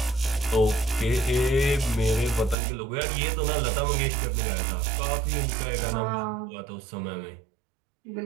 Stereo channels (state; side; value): drops out; left; at 2.6 s